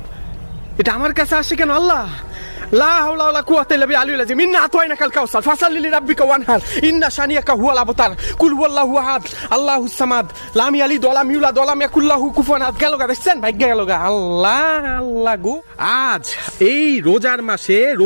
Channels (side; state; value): both; inverted; correlation -1.00